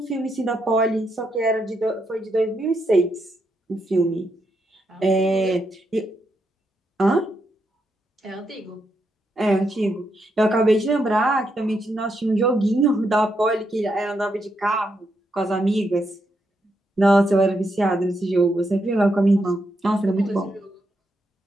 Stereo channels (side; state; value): both; normal; correlation 0.81